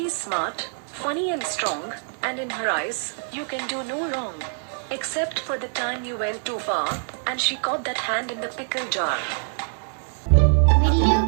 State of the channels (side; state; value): left; silent; 62 dB below the other